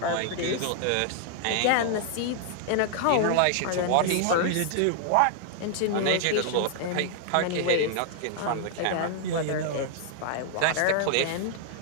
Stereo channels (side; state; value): both; different; correlation -0.01